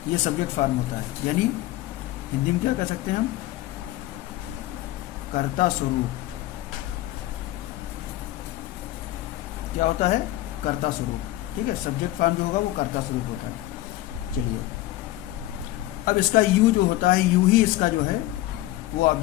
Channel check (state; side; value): quieter; right; 16.2 dB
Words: ये सब्जेक्ट फॉर्म होता है, यानी हिंदी में क्या कह सकते हैं हम, कर्ता स्वरूप। क्या होता है, कर्ता स्वरूप, ठीक है। सब्जेक्ट फॉर्म जो होगा वो कर्ता स्वरूप होता है। चलिए, अब इसका यू जो होता है, यू ही इसका जो है वो